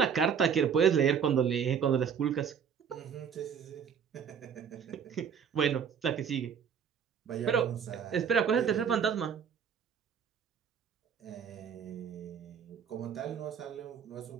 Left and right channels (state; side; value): quieter; left; 7.4 dB